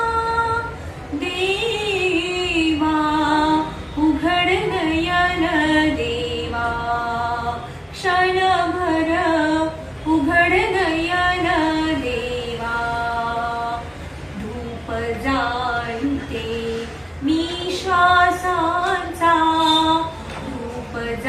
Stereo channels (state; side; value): identical; both; correlation 1.00